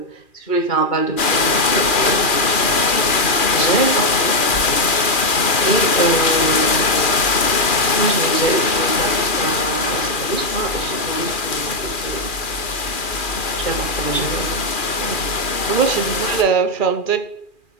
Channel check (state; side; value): late; right; 2.4 ms